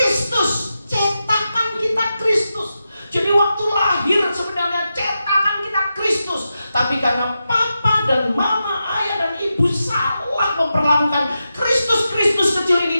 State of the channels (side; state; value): both; inverted; correlation -0.89